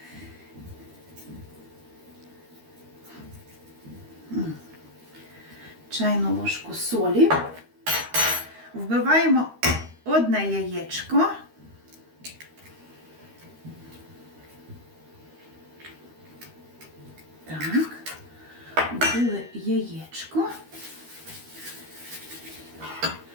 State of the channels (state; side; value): late; left; 13 ms